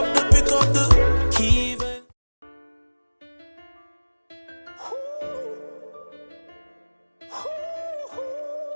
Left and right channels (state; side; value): inverted; both; correlation -1.00